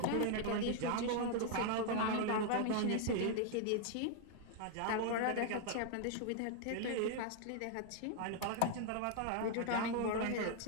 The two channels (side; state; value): both; different; correlation 0.00